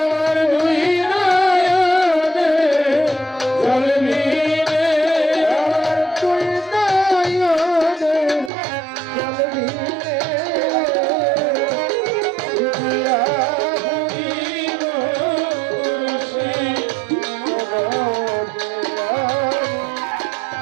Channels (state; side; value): drops out; left; at 8.5 s